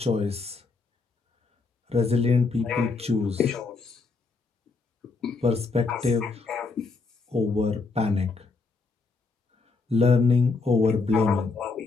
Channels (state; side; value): quieter; right; 4.0 dB